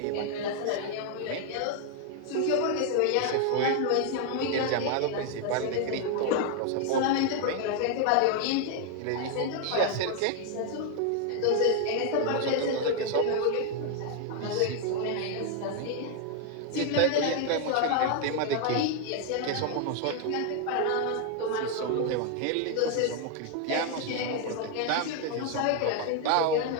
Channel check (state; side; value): different; both; correlation 0.01